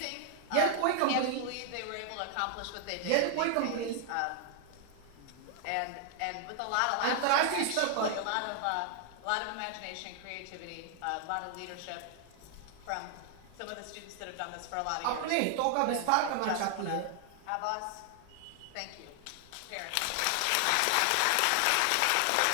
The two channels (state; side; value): different; both; correlation 0.00